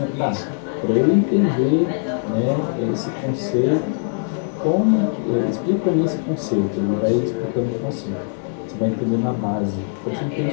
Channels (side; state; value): right; silent; 65 dB below the other